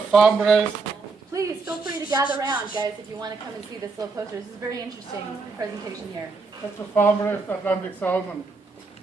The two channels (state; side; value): quieter; left; 4.2 dB